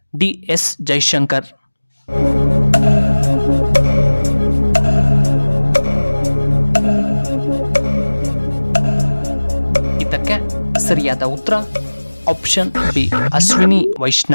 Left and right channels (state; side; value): inverted; both; correlation -1.00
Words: D S Jaishankar. ಇದಕ್ಕೆ ಸರಿಯಾದ ಉತ್ತರ ಆಪ್ಷನ್ ಬಿ ಅಶ್ವಿನಿ